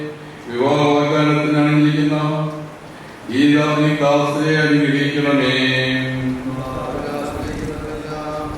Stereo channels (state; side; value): identical; both; correlation 1.00